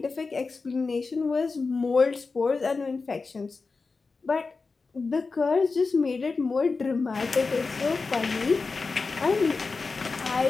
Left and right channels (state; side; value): quieter; right; 4.2 dB